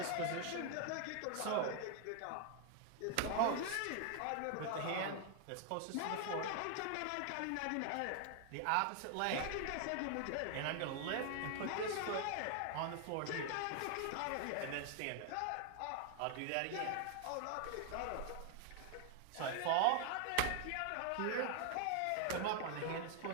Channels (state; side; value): different; both; correlation 0.00